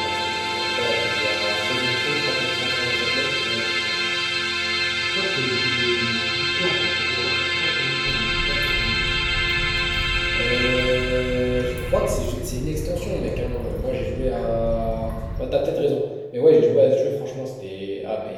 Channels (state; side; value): identical; both; correlation 1.00